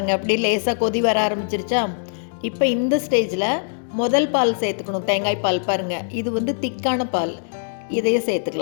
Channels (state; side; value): silent; right; digital silence